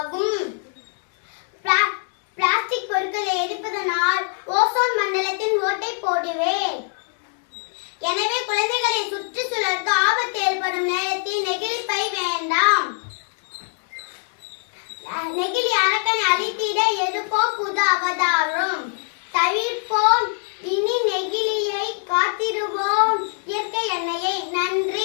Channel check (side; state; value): right; silent; 56 dB below the other